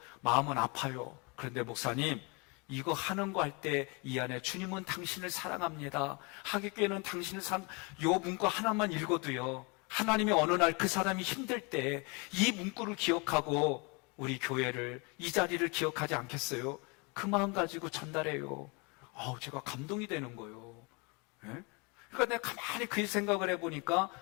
마음은 아파요. 그런데 목사님 이거 하는 거 할 때 이 안에 주님은 당신을 사랑합니다. 하객교회는 당신을 요 문구 하나만 읽어도요, 하나님이 어느 날 그 사람이 힘들 때 이 문구를 기억하고 우리 교회를, 이 자리를 기억하지 않겠어요? 그 마음 가지고 전달해요. 제가 감동이 되는 거예요. 예? 그러니까 내가 가만히 그 생각을 해보니까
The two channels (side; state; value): right; quieter; 30.2 dB